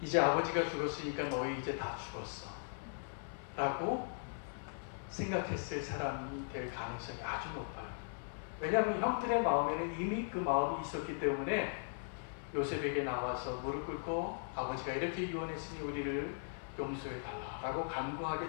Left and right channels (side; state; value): right; silent; 52 dB below the other